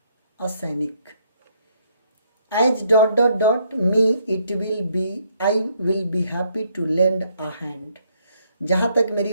असैनिक। As dot dot dot me it will be, I will be happy to lend a hand. जहाँ तक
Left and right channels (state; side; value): inverted; both; correlation -0.70